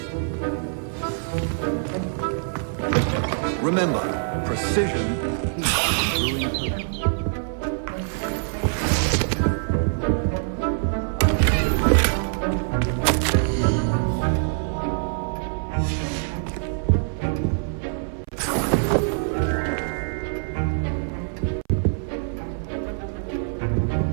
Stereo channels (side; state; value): left; silent; 62 dB below the other